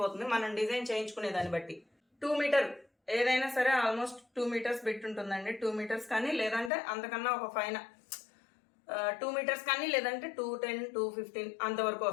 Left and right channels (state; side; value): drops out; right; at 6.7 s